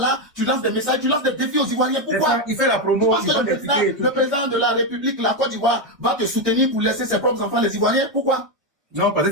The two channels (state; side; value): normal; both; correlation 0.06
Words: tu lances des messages, tu lances des défis aux Ivoiriens. Pourquoi? Il fait la promo. Parce que le président de la République, la Côte d'Ivoire, va te soutenir pour laisser ses propres enfants, les Ivoiriens. Pourquoi? Non, parce